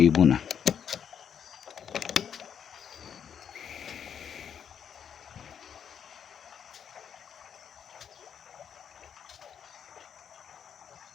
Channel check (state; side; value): quieter; right; 8.1 dB